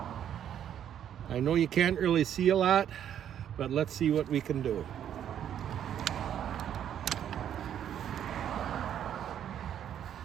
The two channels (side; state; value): left; quieter; 9.9 dB